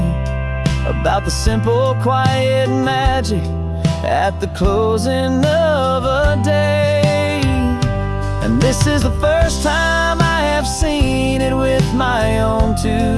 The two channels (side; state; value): both; identical; correlation 1.00